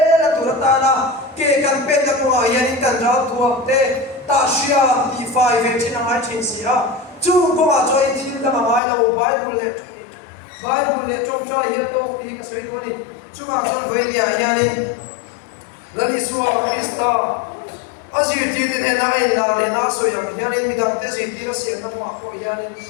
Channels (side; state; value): right; drops out; at 8.8 s